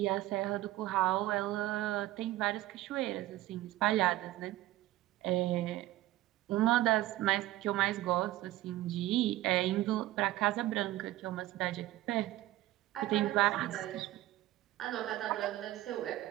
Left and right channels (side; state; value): left; quieter; 15.9 dB